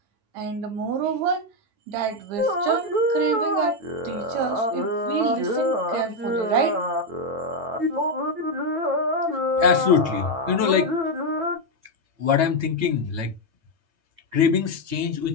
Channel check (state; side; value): late; left; 9.1 ms